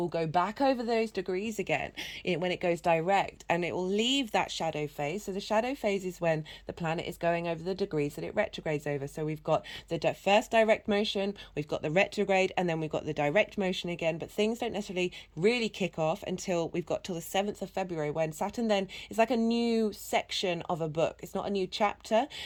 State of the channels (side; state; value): both; identical; correlation 1.00